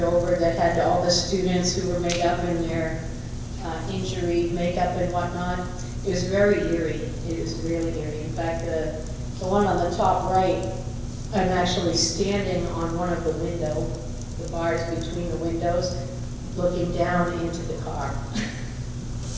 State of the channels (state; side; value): identical; both; correlation 1.00